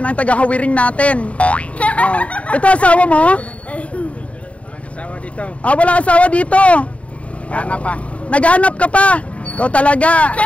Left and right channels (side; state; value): right; late; 0.065 ms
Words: ang tagahawiring natin. Oh. Ito asawa mo? Walang asawa dito. Wala asawa dito. Kana pa. Naghanap ka pa. Ikaw talaga.